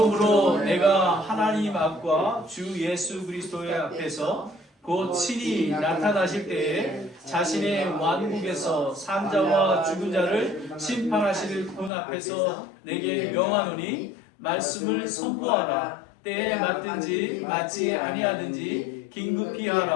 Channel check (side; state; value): right; drops out; at 11.9 s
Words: 내가 하나님 앞과 주 예수 그리스도의 앞에서 곧 친히 나타나실 때에 자신의 왕국에서 산자와 죽은 자를 심판하실 분 앞에서 내게 명하노니 말씀을 선포하라. 때에 맞든지 맞지 아니하든지 긴급히